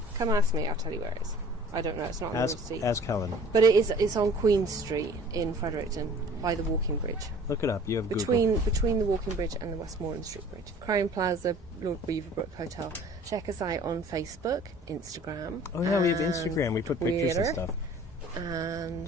Come ask me, I'll tell you where it is. I don't know, it's not on the receipt. Ask Helen. But it's on Queen Street in Fredericton by the walking bridge. Look it up. You have Google. Between the walking bridge and the Westmoreland Street Bridge. Crowne Plaza, Lord Beaverbrook Hotel. Check us out on Facebook, Instagram. Oh yeah, we have and Instagram. We put pictures and Twitter, stuff. And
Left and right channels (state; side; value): normal; both; correlation 0.49